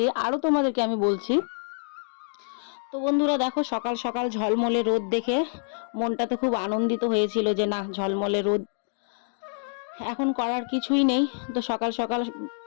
আরও তোমাদেরকে আমি বলছি। তো বন্ধুরা দেখো, সকাল সকাল ঝলমলে রোদ দেখে মনটা তো খুব আনন্দিত হয়েছিল যে না, ঝলমলে রোদ, এখন করার কিছুই নেই। তো সকাল সকাল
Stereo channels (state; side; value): silent; right; digital silence